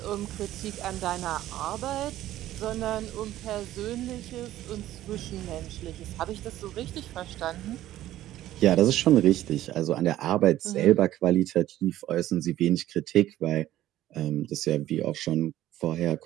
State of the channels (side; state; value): left; quieter; 13.9 dB